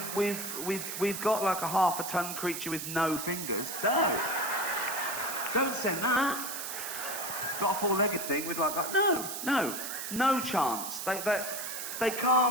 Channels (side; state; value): right; noise; hiss, 6 dB below the sound